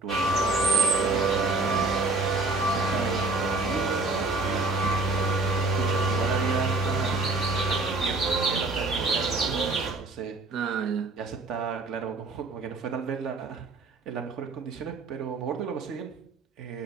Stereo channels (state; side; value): quieter; left; 3.4 dB